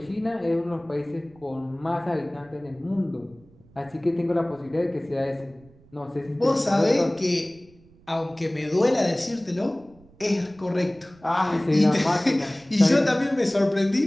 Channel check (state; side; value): noise; right; rumble, 27 dB below the sound